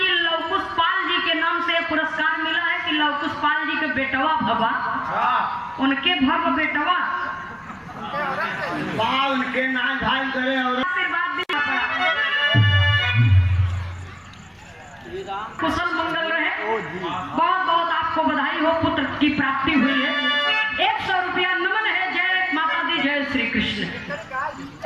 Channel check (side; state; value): both; identical; correlation 1.00